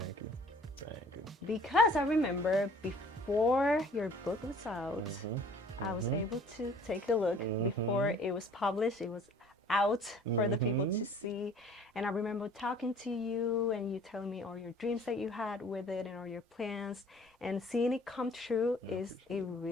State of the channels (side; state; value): both; normal; correlation 0.52